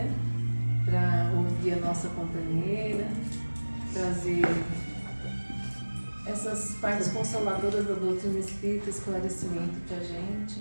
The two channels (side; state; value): both; inverted; correlation -1.00